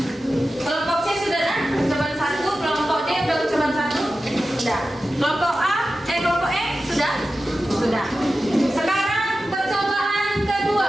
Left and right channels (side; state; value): both; normal; correlation 0.93